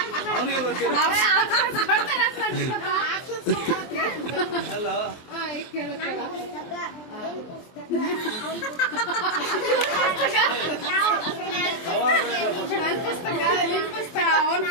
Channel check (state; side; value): late; right; 23 ms